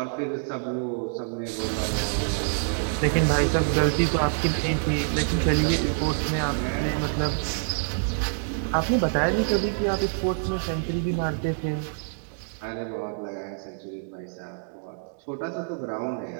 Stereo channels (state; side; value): silent; left; digital silence